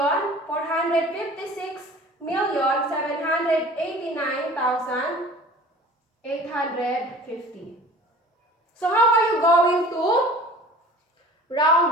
So how are you going to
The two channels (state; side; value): normal; both; correlation 0.44